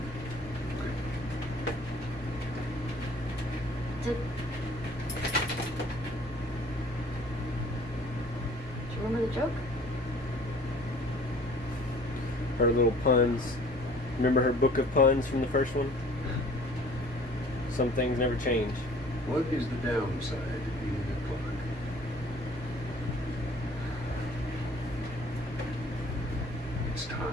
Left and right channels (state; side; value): normal; both; correlation 0.52